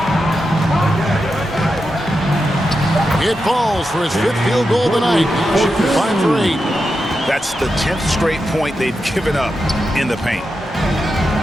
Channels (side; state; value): both; normal; correlation 0.88